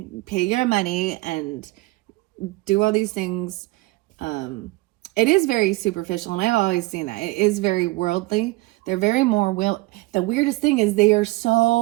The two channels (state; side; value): quieter; left; 21.0 dB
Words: pay your money and do all these things. It is very superficial, and I've always seen that. It is very worldly. They're very more the weirdest thing is they are